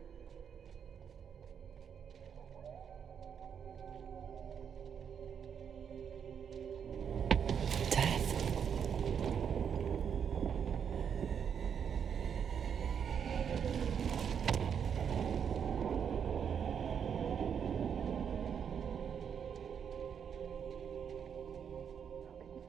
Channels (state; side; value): quieter; left; 7.6 dB